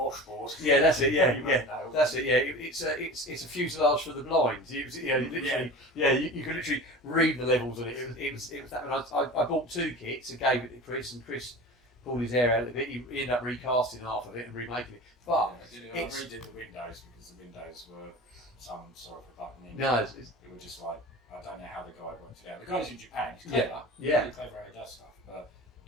Yeah, that's it. Yeah, No. that's it. Yeah, it's a fuselage for the blind. It was, literally, you could literally read the levels on it. It was that. And I bought 2 kits and gave it to Chris, and Chris pulled his hair out of it. He ended up recasting half of it and remaking it. But I redid the windows because the windows were some sort of a button in. no, It was just like, I don't know how the guy worked it out. The guy's in Japan, he's clever. Yeah. Really clever how he does stuff, but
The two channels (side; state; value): both; normal; correlation 0.35